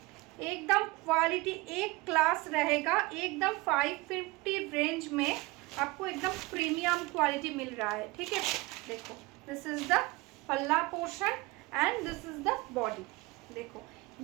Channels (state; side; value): quieter; left; 22.7 dB